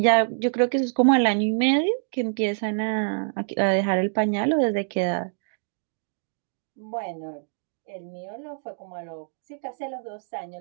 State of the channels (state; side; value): silent; left; digital silence